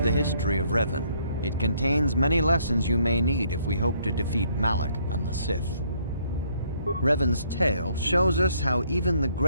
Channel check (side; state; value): both; inverted; correlation -0.67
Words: history of Revan. It contains many lessons you may need if we hope to defeat Malak and the Sith. Revan's tale shows us how even the